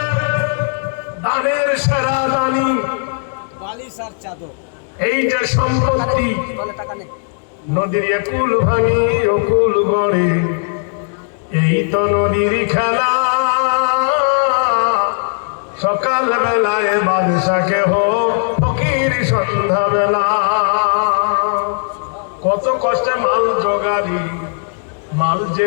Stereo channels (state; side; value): silent; right; 68 dB below the other